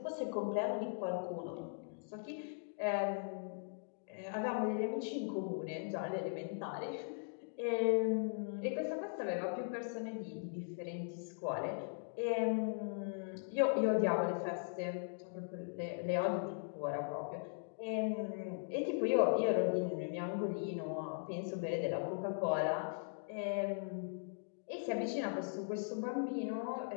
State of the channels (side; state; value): right; silent; digital silence